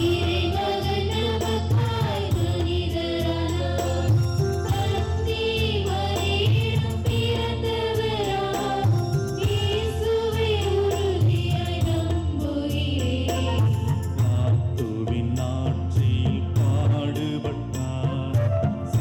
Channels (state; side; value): identical; both; correlation 1.00